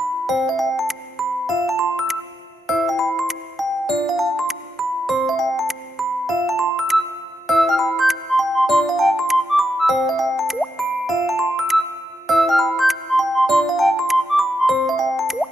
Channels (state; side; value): normal; both; correlation 0.83